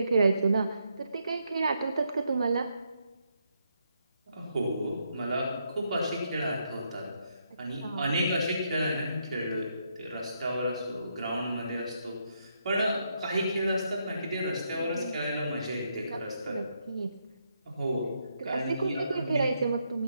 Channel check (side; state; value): both; inverted; correlation -0.78